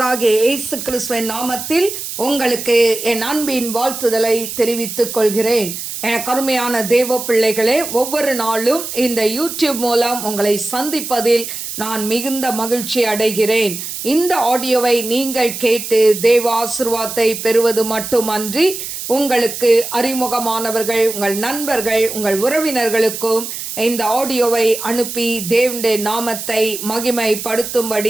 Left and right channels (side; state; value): right; noise; hiss, 7 dB below the sound